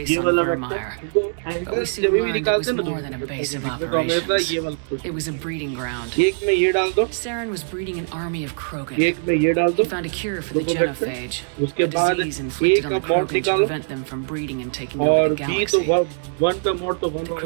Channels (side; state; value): left; silent; digital silence